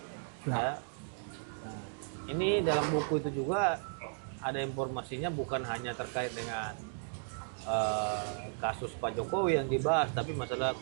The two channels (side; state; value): left; silent; digital silence